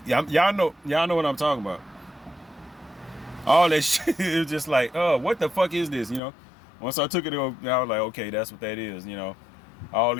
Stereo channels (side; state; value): right; drops out; at 6.2 s